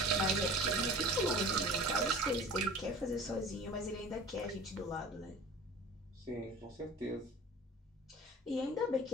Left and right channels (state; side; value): normal; both; correlation 0.41